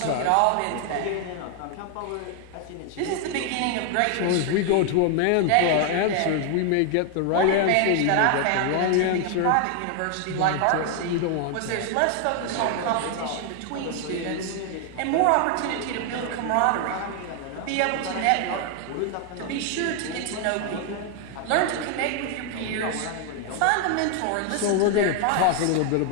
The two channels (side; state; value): both; different; correlation 0.00